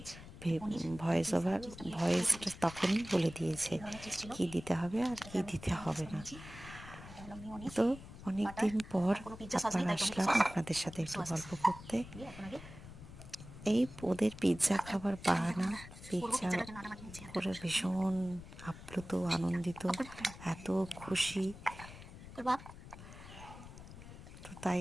ভয়েসটা তখনই বলে দিয়েছে কি দিতে হবে আর কি দিতে হবে না। তো অনেক দিন পর আবার আসলাম আপনাদের সাথে একটু গল্প করতে। এই ওদের পিৎজা খাবার বাহানা, পিৎজা করে ভীষণ আপ্লুত, আনন্দিত, এত খুশি, তো তাই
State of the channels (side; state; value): left; noise; rumble, 15 dB below the sound